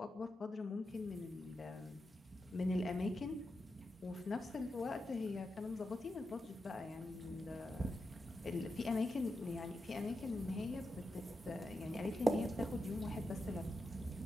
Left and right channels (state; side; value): normal; both; correlation 0.88